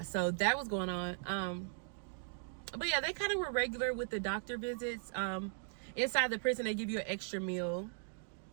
so that was going on. But yeah, they kind of were regular with the doctor visits. Inside the prison, they give you an extra meal,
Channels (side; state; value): left; silent; digital silence